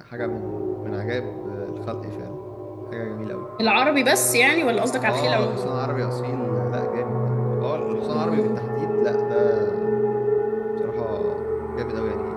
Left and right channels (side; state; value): both; identical; correlation 1.00